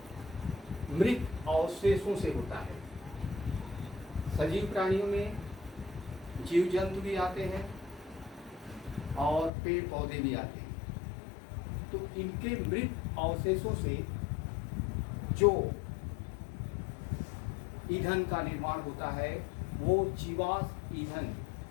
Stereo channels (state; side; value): drops out; right; at 9.5 s